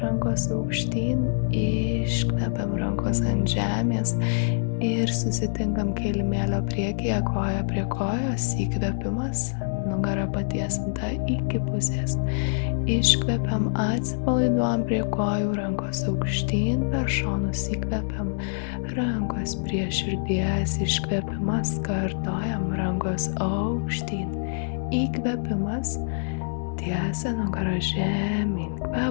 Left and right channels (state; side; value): silent; right; digital silence